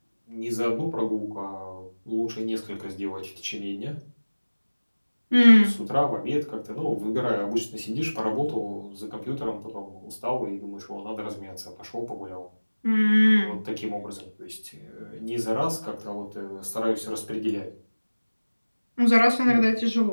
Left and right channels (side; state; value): both; inverted; correlation -1.00